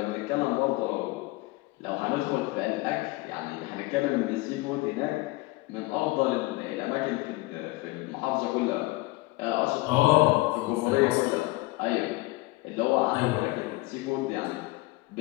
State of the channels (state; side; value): quieter; right; 21.2 dB